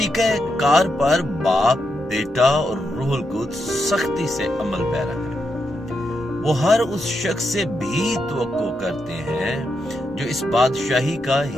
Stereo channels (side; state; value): both; normal; correlation 0.84